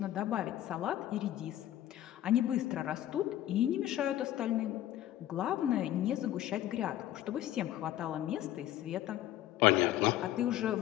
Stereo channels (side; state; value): right; quieter; 13.1 dB